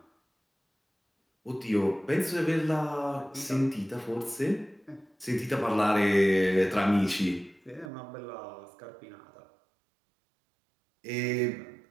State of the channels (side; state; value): left; drops out; at 7.9 s